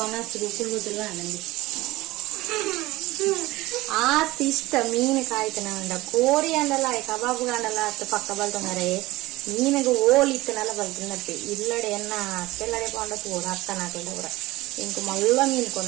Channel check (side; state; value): left; quieter; 19.3 dB